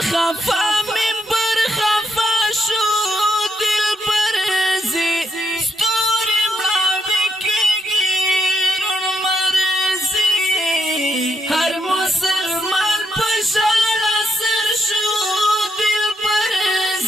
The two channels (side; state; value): both; normal; correlation 0.78